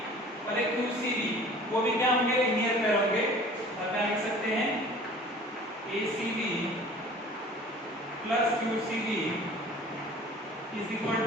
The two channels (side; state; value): both; normal; correlation 0.46